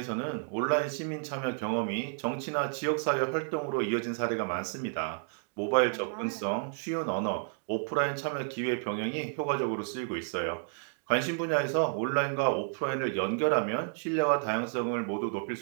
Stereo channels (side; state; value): left; silent; 57 dB below the other